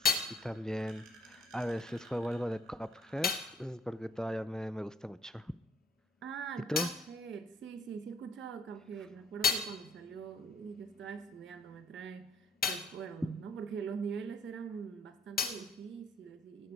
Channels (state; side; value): normal; both; correlation 0.63